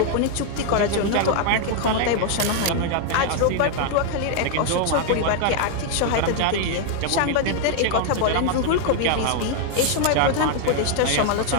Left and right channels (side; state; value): both; different; correlation 0.00